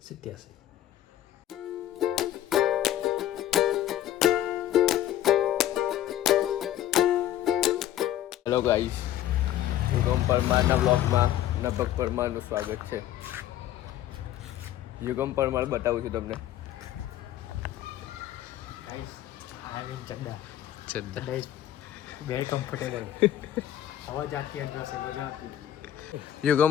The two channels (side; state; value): right; quieter; 12.4 dB